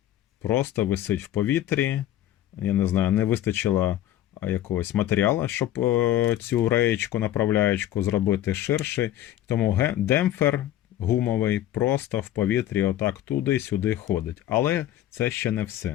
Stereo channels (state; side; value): quieter; right; 12.9 dB